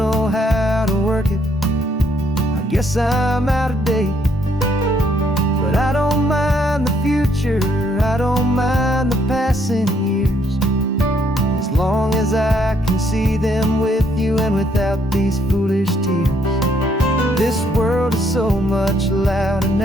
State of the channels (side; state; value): both; normal; correlation 0.70